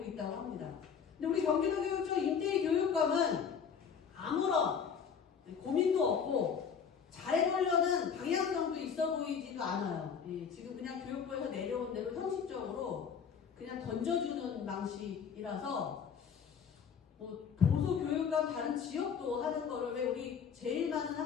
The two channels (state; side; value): quieter; right; 7.0 dB